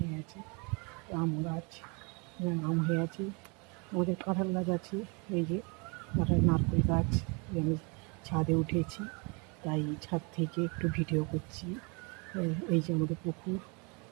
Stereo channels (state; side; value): quieter; left; 31.5 dB